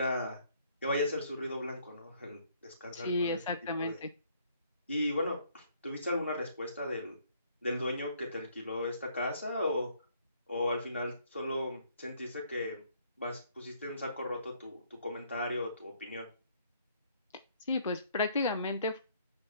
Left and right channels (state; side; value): inverted; both; correlation -0.65